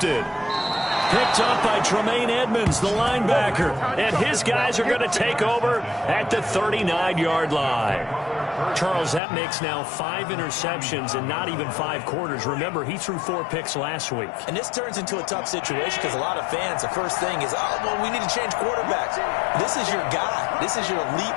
Picked up by Tremaine Edmonds, the linebacker. And his guys are going to take over at the 39-yard line. Charles, that makes now 5 interceptions in not even 5 quarters. Remember, he threw 4 picks last week. And this turns into a tough situation because a lot of fans, the first thing is, oh, well, we need to change quarterbacks. This is your guy. This is your elite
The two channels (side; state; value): right; drops out; at 9.2 s